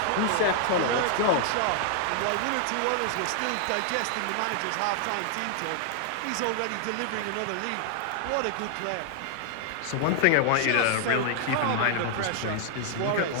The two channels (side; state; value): both; different; correlation -0.01